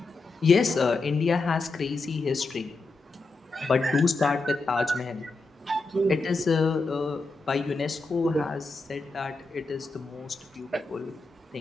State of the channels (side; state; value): right; quieter; 3.6 dB